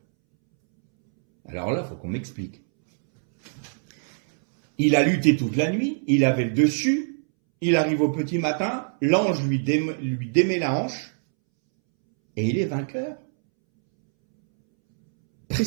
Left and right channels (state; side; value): silent; left; 63 dB below the other